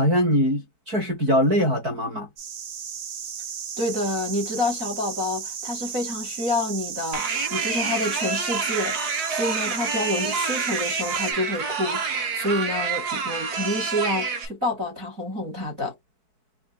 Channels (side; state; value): left; late; 4.6 ms